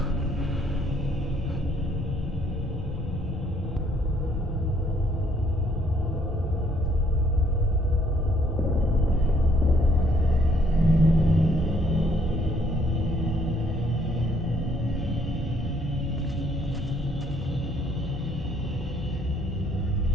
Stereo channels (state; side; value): normal; both; correlation 0.65